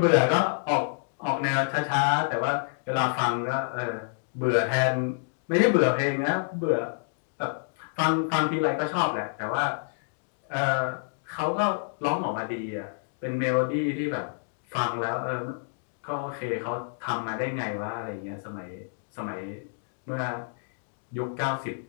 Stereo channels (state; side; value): silent; right; digital silence